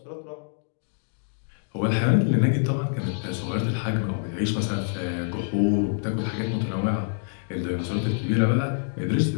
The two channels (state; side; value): silent; right; digital silence